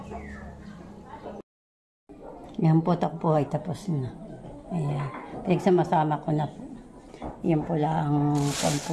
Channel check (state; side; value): identical; both; correlation 1.00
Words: Yan po, takpo ay tapos na. Ayan. Pinagsama-sama ko na po. Yan po lang